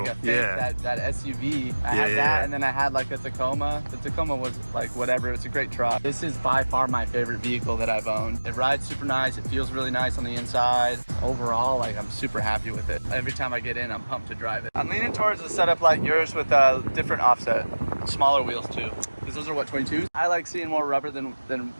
a fake, that SUV. I had that, and then I had like a Tacoma. The Tacoma was like whatever. It's a great truck. This is by far my favorite vehicle that I've owned. It rides super nice. It feels really nice on the inside. Overall, like I'm super happy with it. Every time I get in, I'm pumped to drive it. I'm leaning towards a setup like yours with a different offset, smaller wheels too. Because those are what, 22s? I like seeing more rubber than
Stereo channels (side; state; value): both; inverted; correlation -1.00